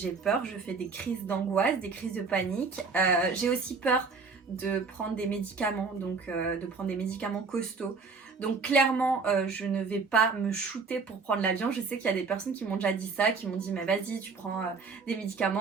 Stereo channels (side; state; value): left; quieter; 4.6 dB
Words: peur, je fais des crises d'angoisse, des crises de panique. J'ai aussi peur de prendre des médicaments, donc de prendre des médicaments costauds. Donc clairement, je ne vais pas me shooter pour prendre l'avion. Je sais qu'il y a des personnes qui m'ont déjà dit ça, qui m'ont dit mais vas-y, tu prends des